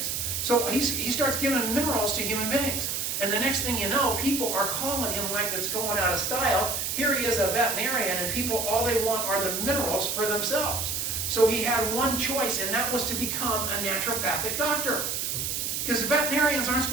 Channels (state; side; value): noise; right; hiss, 1 dB below the sound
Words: So he starts giving minerals to human beings. And the next thing you know, people are calling him like it's going out of style. Here he is, a veterinarian, and people, all they want are the minerals for themselves. So he had one choice, and that was to become a naturopathic doctor. Because veterinarians aren't